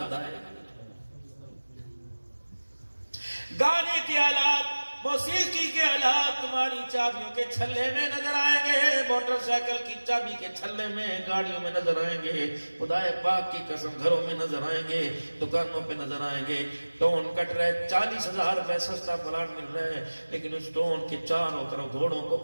آئے گی۔ گانے کے آلات، موسیقی کے آلات تمہاری چابیوں کے چھلے میں نظر آئیں گے، موٹر سائیکل کی چابی کے چھلے میں، گاڑیوں میں نظر آئیں گے، خدا پاک کی قسم گھروں میں نظر آئیں گے، دکانوں پہ نظر آئیں گے۔ ٹون کٹ رہے، 40,000 روپے سستا پلاٹ مل رہا ہے، لیکن اس ٹون کے چاروں طرف گھوڑوں کو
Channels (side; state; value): both; inverted; correlation -1.00